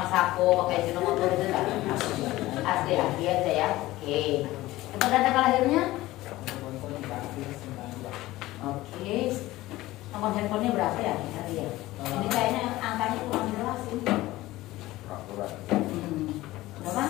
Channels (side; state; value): right; quieter; 17.5 dB